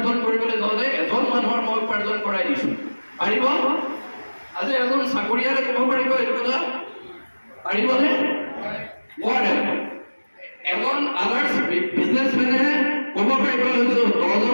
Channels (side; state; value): both; inverted; correlation -1.00